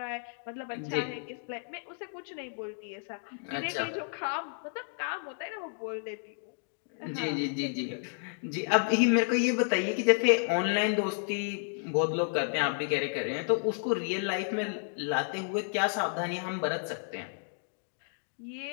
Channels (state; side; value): silent; right; digital silence